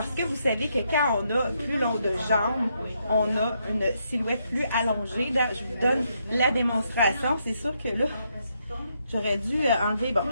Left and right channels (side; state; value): both; inverted; correlation -0.77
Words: que vous savez que quand on a plus long de jambes, on a une silhouette plus allongée. Là, je vous donne la démonstration. C'est sûr que là, j'aurais dû enlever, bon,